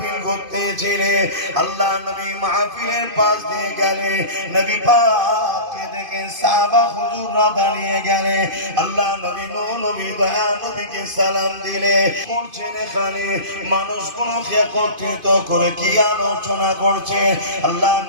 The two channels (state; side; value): late; left; 2.5 ms